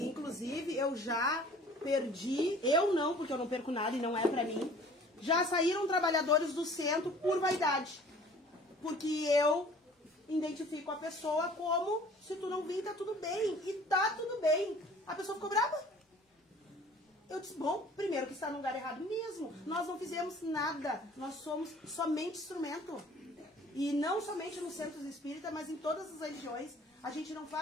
inclusive, eu já perdi, eu não, porque eu não perco nada e não é pra mim, já saíram trabalhadores do centro por vaidade. Porque eu identifico a pessoa como, se tu não vir, tá tudo bem. E tá tudo bem. A pessoa ficou brava. Eu disse, bom, primeiro que está no lugar errado mesmo. Nós não fizemos nada. Nós somos somente instrumento. E não somente nos centros espíritas, mas em todas as religiões. A gente não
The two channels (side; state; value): both; normal; correlation 0.50